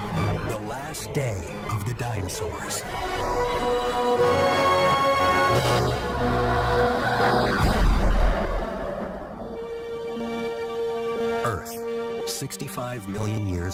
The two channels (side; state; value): both; identical; correlation 1.00